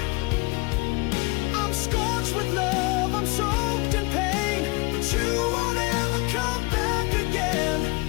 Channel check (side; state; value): right; quieter; 25.8 dB